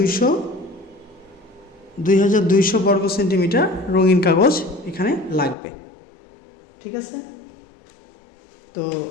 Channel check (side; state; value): right; drops out; at 5.6 s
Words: বর্গ সেন্টিমিটার রঙিন কাগজ এখানে লাগবে। ঠিক আছে, তো